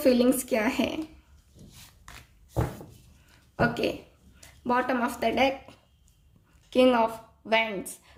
क्या है। Okay, bottom of the deck, king of wands.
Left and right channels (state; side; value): identical; both; correlation 1.00